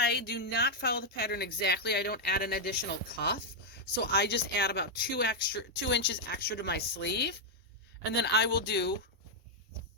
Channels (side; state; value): both; normal; correlation -0.02